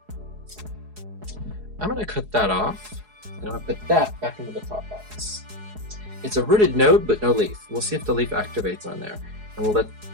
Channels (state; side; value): late; left; 4.7 ms